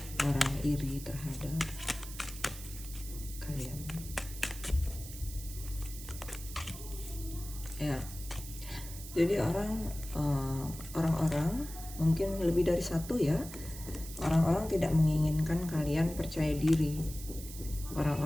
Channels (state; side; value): noise; right; hiss, 13 dB below the sound